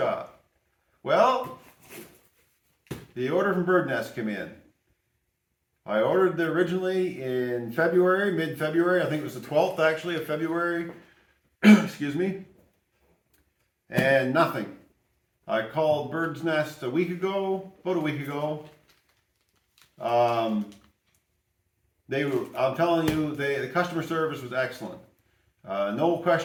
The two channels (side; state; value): both; identical; correlation 1.00